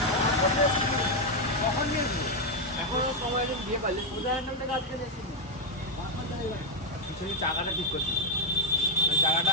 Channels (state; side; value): normal; both; correlation 0.03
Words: কখন নিয়েছি এখনো সময় দিন দিয়ে পারলে উদাহরণ থেকে আজকে দেখছি পিছনে চাকাটা ঠিক করছি চাকাটা